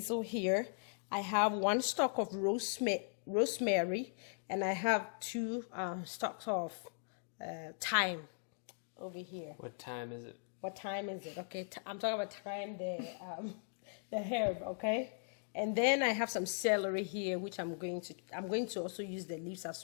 here. I have 1 stalk of rosemary, and I have 2 stalks of thyme over here. What time is it? What time is it? Okay, I'm talking about thyme, the herb, okay? And then I have some celery here, which I'm going to also use the leaves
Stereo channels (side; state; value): right; silent; digital silence